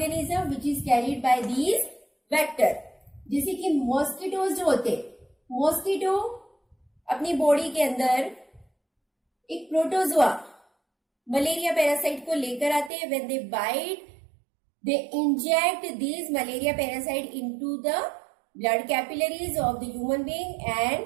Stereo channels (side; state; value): left; drops out; at 12.9 s